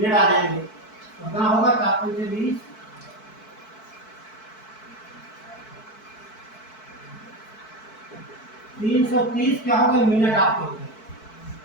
आ जाएंगे। तो कितना होगा, 4 पंचे 20, 330 क्या हो गए, मिनट आपके हो गए।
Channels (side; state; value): right; late; 4.6 ms